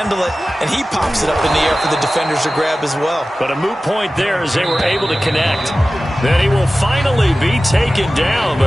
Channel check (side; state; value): both; normal; correlation 0.96